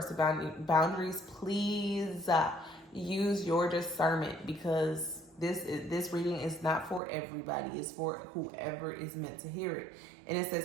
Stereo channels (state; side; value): drops out; left; at 7.0 s